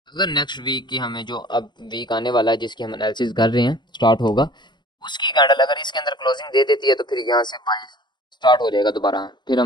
अगर नेक्स्ट वीक की हमें जो अब वीक आने वाला है जिसकी हम एनालिसिस कर रहे हैं स्टार्ट होगा, उसकी कैंडल अगर इसके अंदर क्लोजिंग दे देती है तो फिर यहाँ से बाय स्टार्ट हो जाएगा दोबारा, फिर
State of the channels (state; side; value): late; right; 0.21 ms